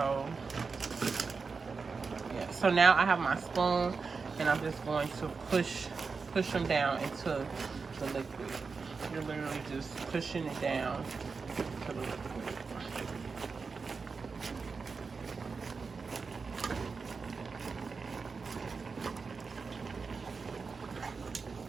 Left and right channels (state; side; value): quieter; left; 4.8 dB